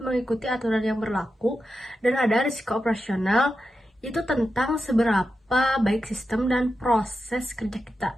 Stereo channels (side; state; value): both; normal; correlation 0.89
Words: mengikuti aturan yang berlaku. Dan ada risiko operasional, itu tentang seberapa baik sistem dan proses kerja